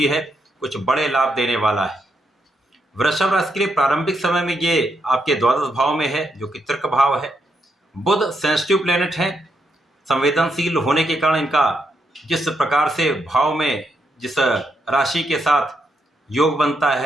है, कुछ बड़े लाभ देने वाला है। वृषभ राशि के लिए प्रारंभिक समय में ये आपके द्वादश भाव में है, जो कि तर्क भाव है। बुध सेंसिटिव प्लेनेट है, संवेदनशील होने के कारण इनका जिस प्रकार से भाव में जिस राशि के साथ योग बनता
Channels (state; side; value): normal; both; correlation 0.79